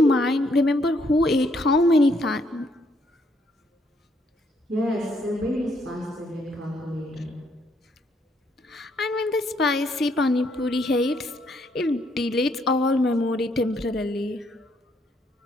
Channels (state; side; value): normal; both; correlation 0.71